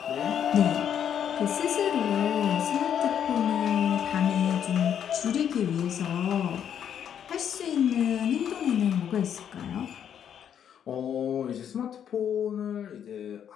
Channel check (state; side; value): quieter; right; 8.9 dB